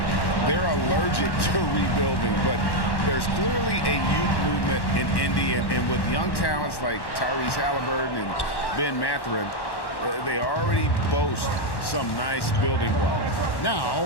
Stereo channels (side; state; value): right; late; 1.1 ms